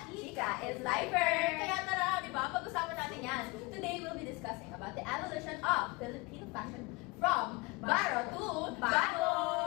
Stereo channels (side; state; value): right; quieter; 25.4 dB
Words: Chika is lifer. Kaya tara, di ba? Pag-usapan natin yan. Today, we'll be discussing about the evolution of Filipino fashion from baro to bago.